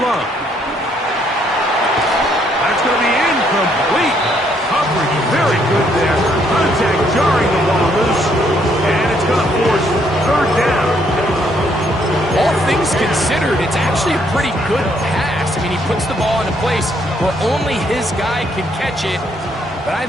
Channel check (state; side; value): normal; both; correlation 0.70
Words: That's going to be incomplete. Coverage very good there. Contact jarring the ball loose. And it's going to force 3rd down. All things considered, it's actually a pretty good pass. I mean, he puts the ball in a place where only his guy can catch it. But I